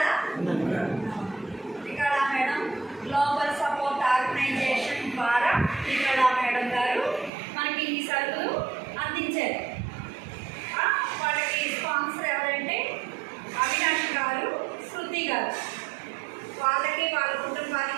Srikala madam global support organization ద్వారా శ్రీకళ మేడం గారు మనకి ఈ సరుకులు అందించారు. వాళ్ళకి స్పాన్సర్ ఎవరంటే అవినాష్ గారు, శృతి గారు. వాళ్ళకి వాళ్ళ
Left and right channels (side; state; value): left; drops out; at 7.3 s